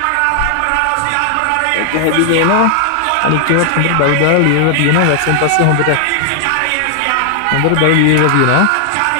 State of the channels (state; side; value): different; both; correlation 0.00